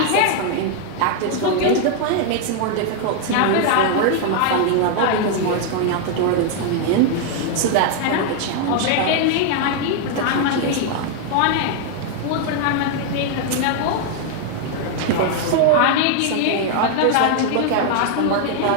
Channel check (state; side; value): different; both; correlation 0.00